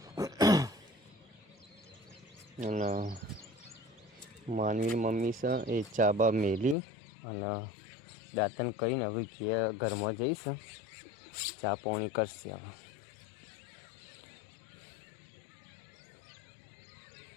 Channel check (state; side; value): drops out; right; at 6.8 s